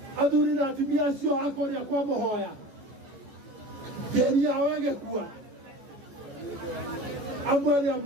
Athuri na atumia acio a kũrĩa kwa Mũhoya, tĩri yao ĩgĩkua, amwe arĩa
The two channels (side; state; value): left; late; 14 ms